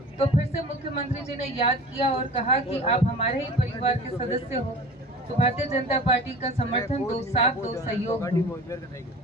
फिर से मुख्यमंत्री जी ने याद किया और कहा कि आप हमारे ही परिवार के सदस्य हो, तो भारतीय जनता पार्टी का समर्थन दो, साथ दो, सहयोग दो।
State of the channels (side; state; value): both; normal; correlation 0.39